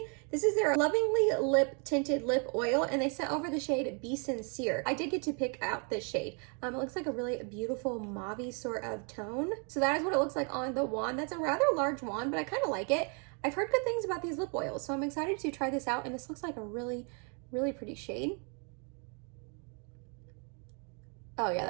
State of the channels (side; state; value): left; quieter; 37.9 dB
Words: This is their Lovingly Lip Tinted Lip Oil, and they sent over the shade Be Sincere. I did get to pick out this shade. It looks like a really beautiful mauve-y sort of tone. So that is what it looks like on the wand. That's a rather large wand, but I kind of like it. I've heard good things about these lip oils, so I'm excited to try this out, and this looks like a really, really pretty shade. Oh yeah,